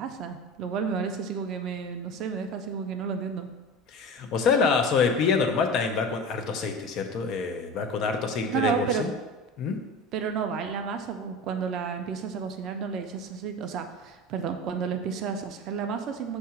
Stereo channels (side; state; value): both; normal; correlation 0.31